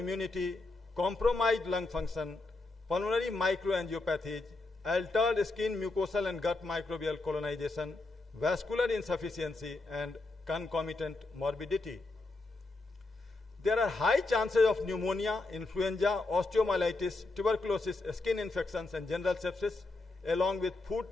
compromised lung function, pulmonary microangiopathies, altered skin mucosal and gut microbial colonization, vascular insufficiency, and concomitant morbidity. There are high chances of pneumonia, influenza, osteomyelitis, tuberculosis, skin infections, and general sepsis, along with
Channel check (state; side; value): quieter; right; 3.2 dB